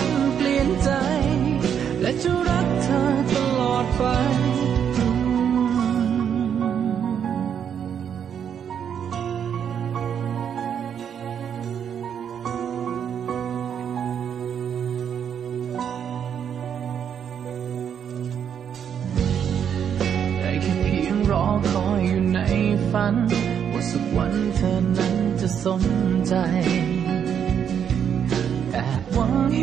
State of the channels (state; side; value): quieter; left; 8.3 dB